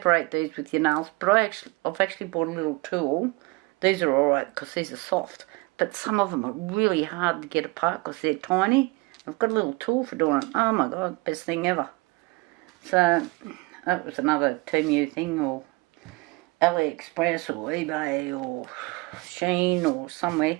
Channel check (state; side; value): quieter; left; 24.6 dB